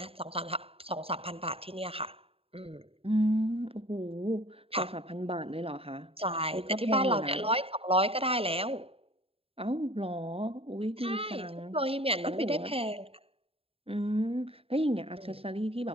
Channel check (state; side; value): late; left; 0.28 ms